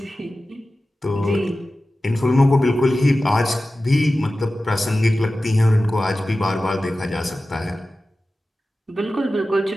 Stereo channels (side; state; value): both; normal; correlation 0.95